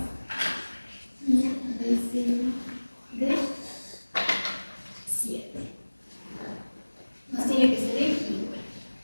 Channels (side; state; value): both; inverted; correlation -1.00